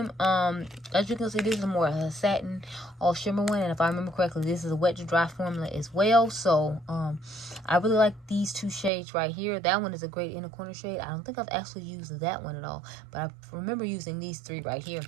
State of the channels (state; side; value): drops out; left; at 8.9 s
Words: As you can see, this is more a satin all shimmer one, and if I remember correctly, this is a wet to dry formula as well. So I really like these 2 shades right here. That one is a great inner corner shade. I don't think I've actually used that one at all, but I remember using these 3 right here